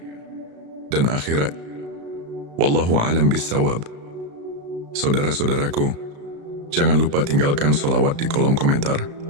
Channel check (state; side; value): late; left; 35 ms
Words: dan akhirat. Wallahu a'lam bissawab. Saudara-saudaraku, jangan lupa tinggalkan sholawat di kolom komentar,